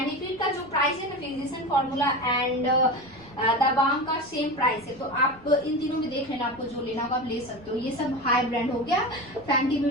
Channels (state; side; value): noise; left; rumble, 27 dB below the sound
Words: का जो प्राइस है ना, physician formula and the Balm का सेम प्राइस है, तो आप इन तीनों में देख लेना, आपको जो लेना होगा आप ले सकते हो। ये सब हाई ब्रांड हो गया, फैंटी